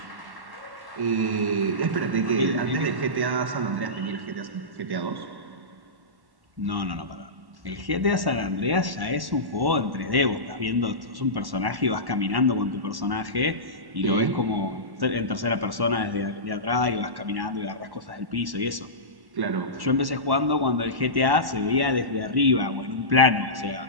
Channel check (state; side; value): late; left; 1.1 ms